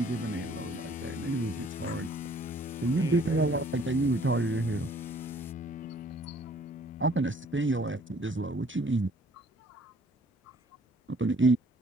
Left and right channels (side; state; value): both; normal; correlation 0.58